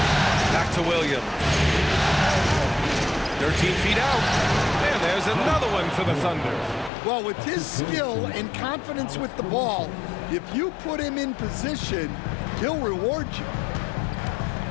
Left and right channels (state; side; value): drops out; right; at 6.9 s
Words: Back to Williams. 13 feet out. And there's another one for the Thunder. Well, with his skill and confidence with the ball, if you put him in position, he'll reward you.